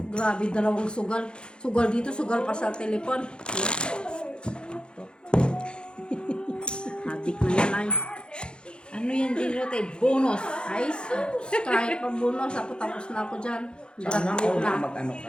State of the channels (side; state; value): right; late; 0.052 ms